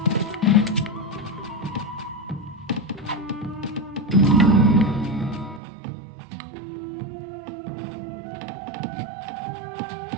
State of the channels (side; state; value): left; drops out; at 5.6 s